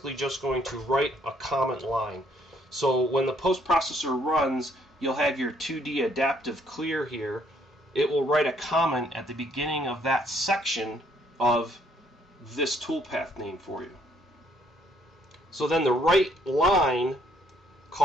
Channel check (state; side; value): normal; both; correlation 0.67